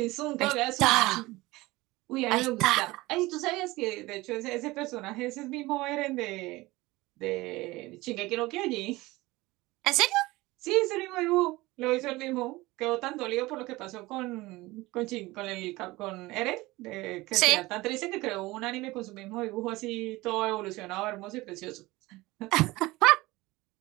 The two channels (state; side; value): quieter; left; 20.3 dB